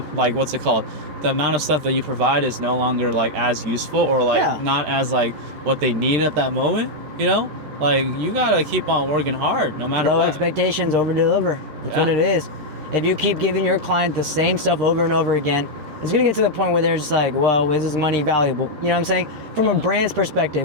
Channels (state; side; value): late; left; 13 ms